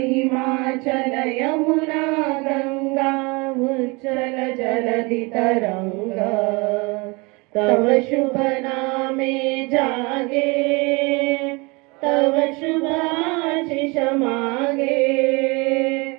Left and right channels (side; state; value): left; quieter; 27.4 dB